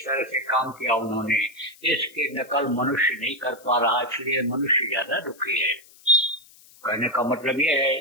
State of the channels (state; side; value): noise; left; hiss, 25 dB below the sound